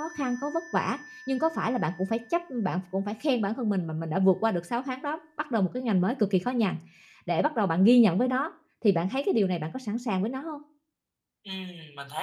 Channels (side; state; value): both; identical; correlation 1.00